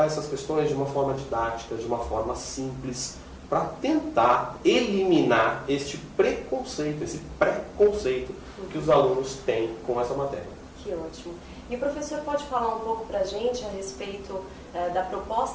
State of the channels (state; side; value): identical; both; correlation 1.00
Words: essas questões de uma forma didática, de uma forma simples, para tentar eliminar este preconceito, esse preconceito que os alunos têm com essa matéria. Que ótimo. E o professor pode falar um pouco para a gente a respeito da